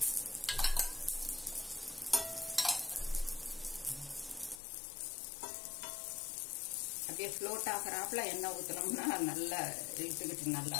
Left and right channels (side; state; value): right; drops out; at 4.6 s